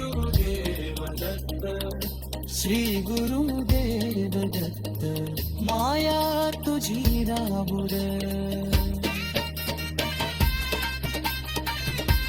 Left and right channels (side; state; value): both; identical; correlation 1.00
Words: श्री गुरुदेव दत्त माया तुझी रामू दे